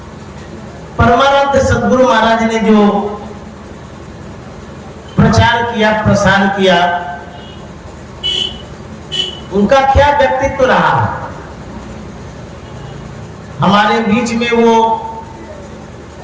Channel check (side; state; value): both; identical; correlation 1.00